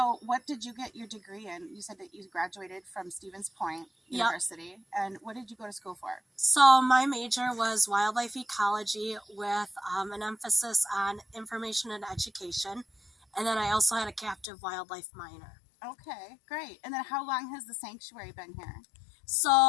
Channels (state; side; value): drops out; right; at 14.5 s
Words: what did you get your degree in? You said that you graduated from Stevens Point University. Yep. And what did you go to school for? So my major was wildlife ecology with an emphasis on information and education. And then I also had a captive wildlife minor. Okay, great. And then how long has the sanctuary been here?